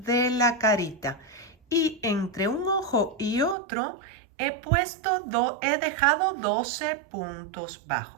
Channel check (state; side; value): drops out; left; at 3.6 s